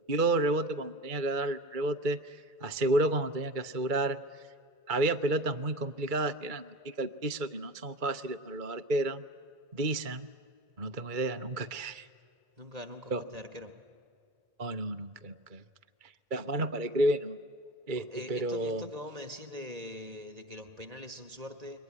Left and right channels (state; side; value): late; left; 2.2 ms